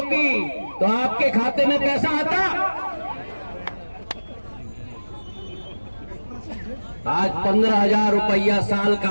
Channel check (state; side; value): inverted; both; correlation -1.00